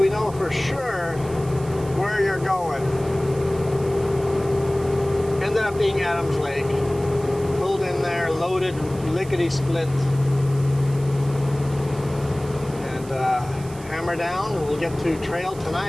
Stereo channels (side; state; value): right; noise; hiss, 20 dB below the sound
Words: know for sure where you're going. Ended up being Adams Lake. Pulled in there, loaded, lickety-split. And hammer down, and we'll get to trail